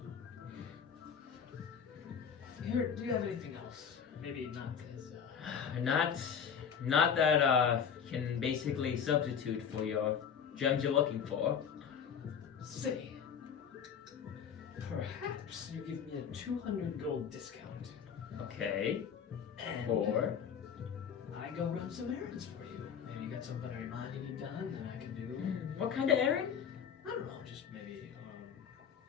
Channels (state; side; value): quieter; right; 7.4 dB